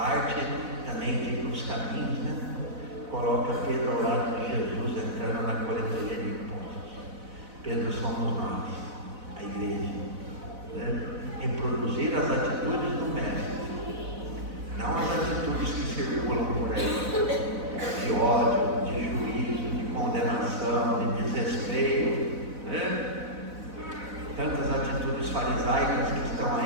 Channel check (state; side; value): late; left; 4.0 ms